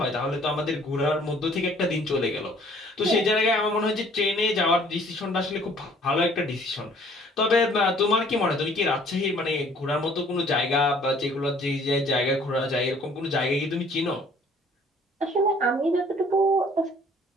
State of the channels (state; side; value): normal; both; correlation 0.57